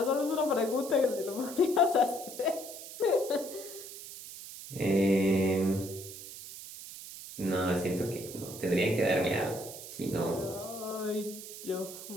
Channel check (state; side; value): noise; right; hiss, 12 dB below the sound